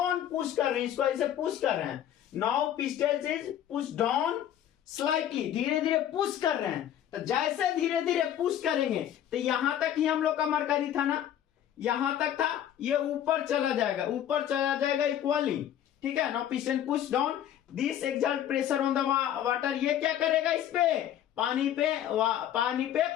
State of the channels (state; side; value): quieter; right; 10.8 dB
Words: पुश कर रहे हैं, इसको ऐसे पुश कर रहे हैं। Now piston is push down slightly, धीरे धीरे पुश कर रहे हैं। तो जैसे धीरे धीरे पुश करेंगे तो यहां तक ही हम लोग का मरकरी था ना, यहां तक था, ये ऊपर चला जाएगा, ऊपर चला जाएगा इक्वली, ठीक है। Now piston push down, this exert pressure on the water, ये क्या करेगा, इस पे पानी पे